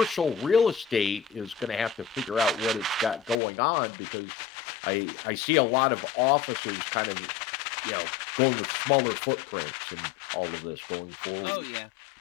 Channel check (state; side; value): drops out; right; at 3.4 s